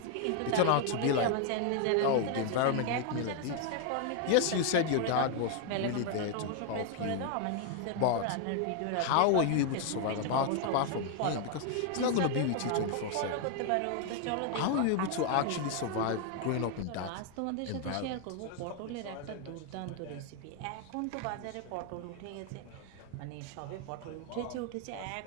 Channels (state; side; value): different; both; correlation 0.00